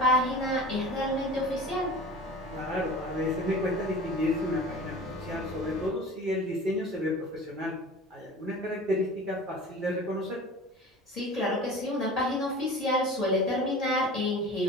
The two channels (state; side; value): normal; both; correlation 0.38